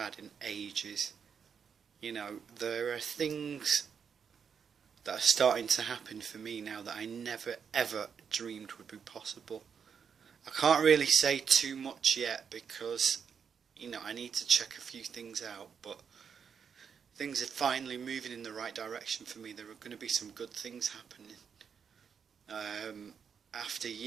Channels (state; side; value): quieter; left; 6.9 dB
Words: in ages. There are things that are starting to happen for me now that I never ever dreamed would be possible. I can't really say too much yet because I need to check a few things out, but things are finally moving in the right direction for me. There are going to be some good things happening. After